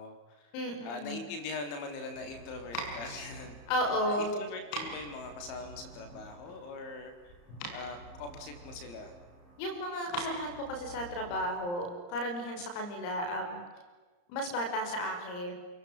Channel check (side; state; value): right; late; 34 ms